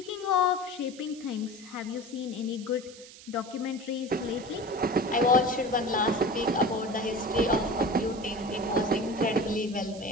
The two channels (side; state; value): right; noise; hiss, 18 dB below the sound